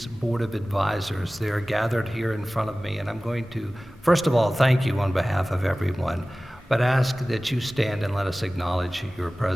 Board of Advisors. They are gathered here in front of me, and I'm going to, first of all, thank you on behalf of everyone, but ask that you stand and let us acknowledge your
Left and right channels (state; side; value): normal; both; correlation 0.97